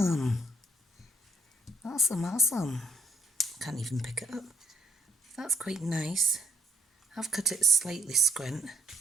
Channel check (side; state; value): both; normal; correlation 0.68